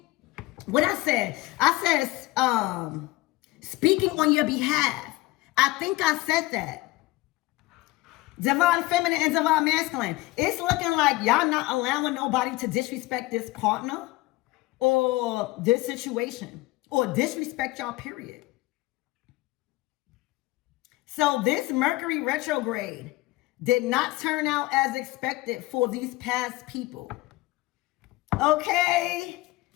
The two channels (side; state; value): right; quieter; 19.9 dB